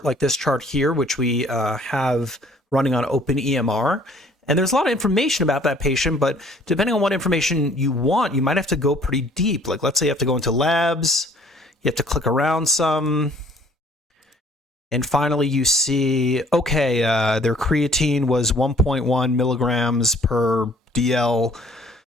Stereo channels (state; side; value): normal; both; correlation 0.57